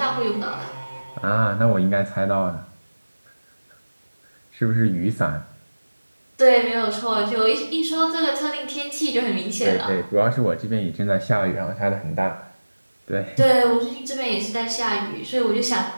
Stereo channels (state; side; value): inverted; both; correlation -1.00